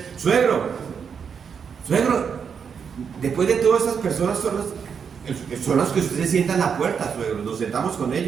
suegro, después de todas esas personas son las que usted se sienta en la puerta, suegro. Nos sentamos con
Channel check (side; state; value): left; quieter; 6.7 dB